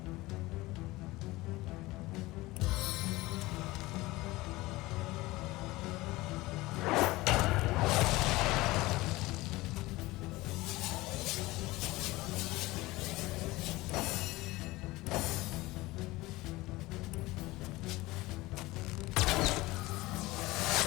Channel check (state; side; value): quieter; right; 19.9 dB